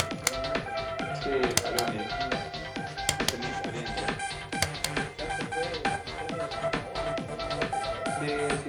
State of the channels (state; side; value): identical; both; correlation 1.00